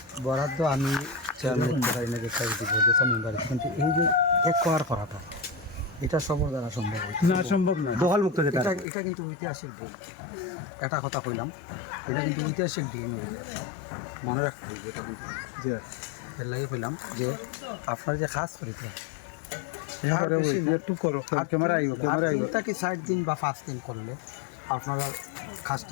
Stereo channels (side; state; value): right; drops out; at 8.8 s